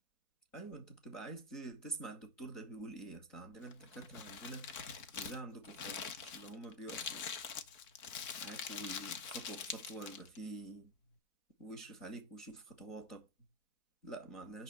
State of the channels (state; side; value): late; right; 4.4 ms